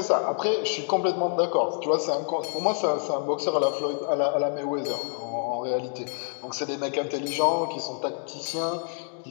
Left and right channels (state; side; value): silent; right; 60 dB below the other